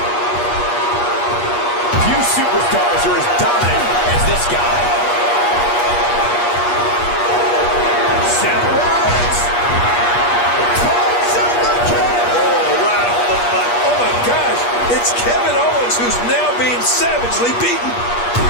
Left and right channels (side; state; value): right; late; 8.4 ms